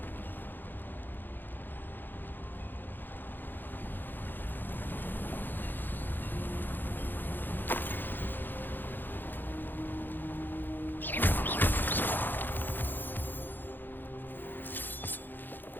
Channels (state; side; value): late; right; 0.092 ms